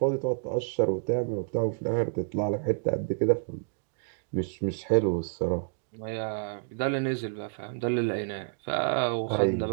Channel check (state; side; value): silent; left; digital silence